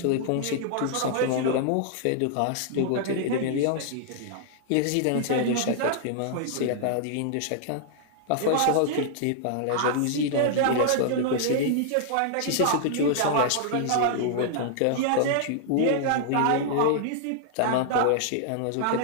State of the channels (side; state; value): both; different; correlation -0.01